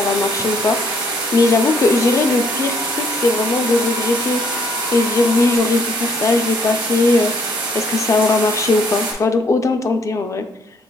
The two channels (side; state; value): both; normal; correlation 0.66